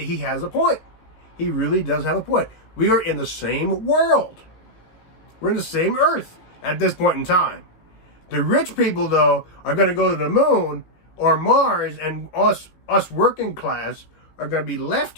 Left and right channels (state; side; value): late; right; 18 ms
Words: has a point. He really does have a point. We are in the same world. We're in the same earth at this point in time. The rich people, though, are going to go to the moon or Mars, and us working class are going to be